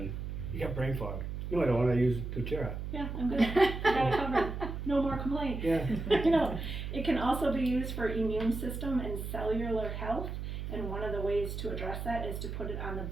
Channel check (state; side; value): noise; right; hum, 5 dB below the sound